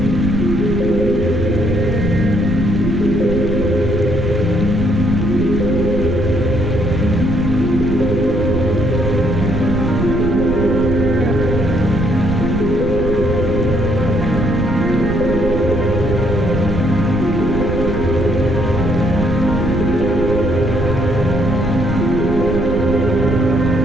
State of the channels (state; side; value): noise; right; rumble, 3 dB below the sound